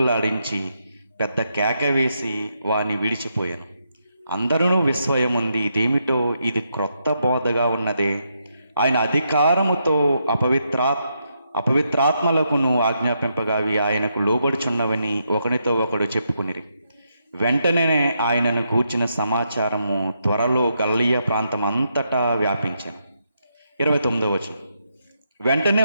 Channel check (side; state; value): both; inverted; correlation -0.80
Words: పెద్ద కేక వేసి వాని విడిచిపోయాను. అందరూ విస్మయముంది, ఇదేమిటో, ఇది క్రొత్త బోధగా ఉన్నదే. ఆయన అధికారముతో అపవిత్రాత్మలకును ఆజ్ఞాపింపగా అవి ఆయనకు లోబడుచున్నవని ఒకనితో ఒకడు చెప్పుకునిరి. వెంటనే ఆయనను గూర్చిన సమాచారము త్వరలో గలిలయ ప్రాంతం అంతటా వ్యాపించాను. 29వ వచనం. వెంటనే